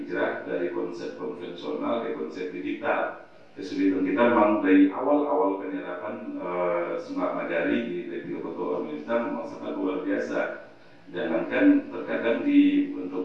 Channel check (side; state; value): both; identical; correlation 1.00